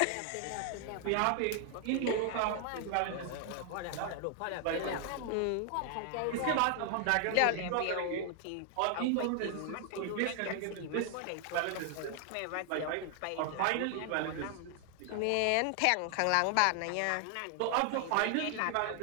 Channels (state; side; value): different; both; correlation 0.00